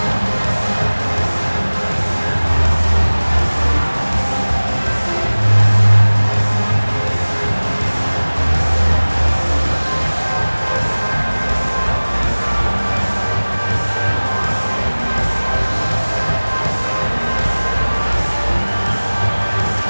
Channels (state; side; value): inverted; both; correlation -1.00